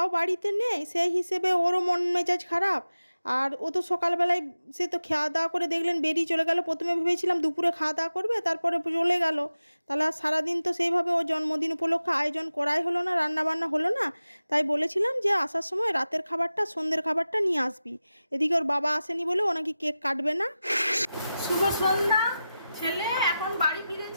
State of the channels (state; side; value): inverted; both; correlation -0.94